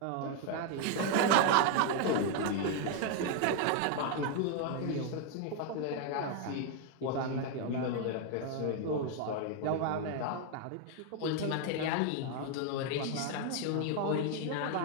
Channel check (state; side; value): different; both; correlation 0.01